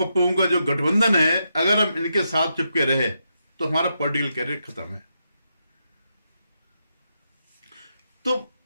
का जो गठबंधन है, अगर हम इनके साथ चिपके रहे तो हमारा पॉलिटिकल कैरियर खत्म है। तो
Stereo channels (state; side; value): inverted; both; correlation -0.83